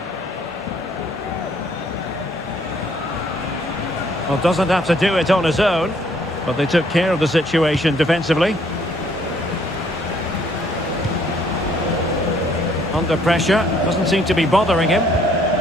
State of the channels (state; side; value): normal; both; correlation 0.64